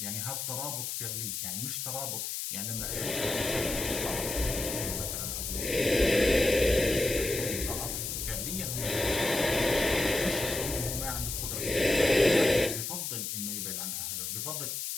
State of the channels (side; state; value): left; noise; hiss, 3 dB below the sound